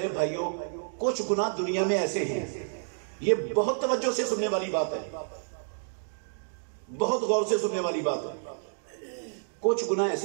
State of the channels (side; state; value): left; silent; digital silence